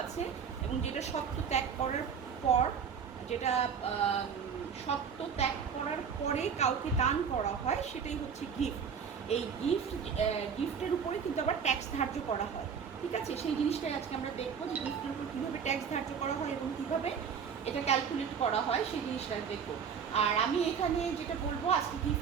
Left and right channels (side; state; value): left; quieter; 6.9 dB